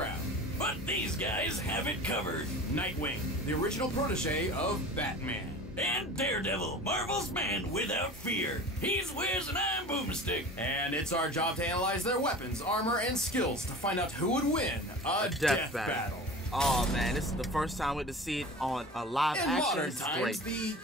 But these guys have it covered. Nightwing, the original protege of Batman. And Daredevil, Marvel's man without fear. He's Wiz and I'm Boomstick. And it's our job to analyze their weapons, armor, and skills to find out who would win a death battle. Oh man, this is the first time we get to see it on a live In action. modern This is times, great. the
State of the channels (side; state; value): both; normal; correlation 0.37